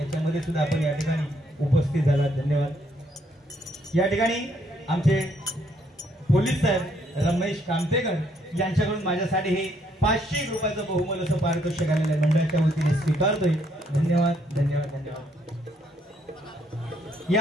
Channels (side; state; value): both; normal; correlation 0.70